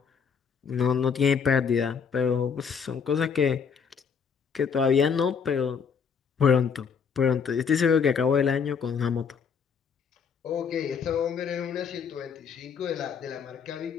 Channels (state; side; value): quieter; right; 6.4 dB